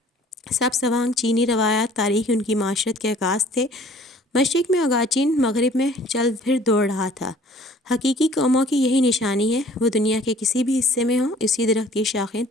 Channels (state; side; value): normal; both; correlation 0.53